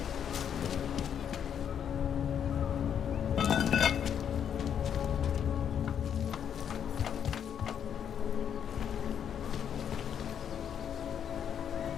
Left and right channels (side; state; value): right; quieter; 8.5 dB